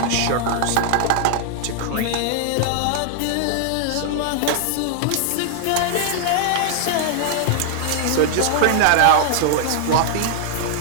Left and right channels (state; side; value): different; both; correlation -0.01